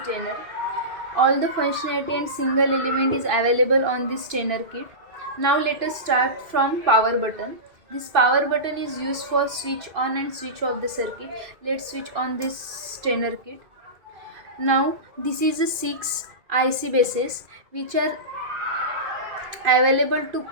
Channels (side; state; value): left; late; 2.6 ms